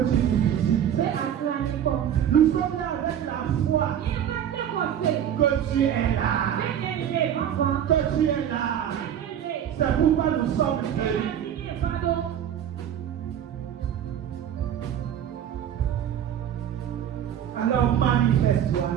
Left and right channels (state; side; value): quieter; left; 9.7 dB